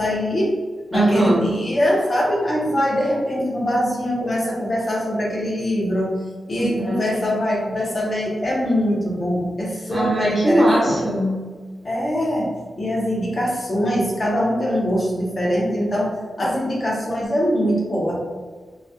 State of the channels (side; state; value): both; normal; correlation 0.89